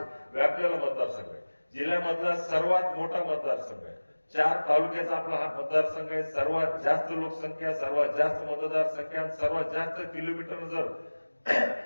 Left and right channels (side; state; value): both; inverted; correlation -1.00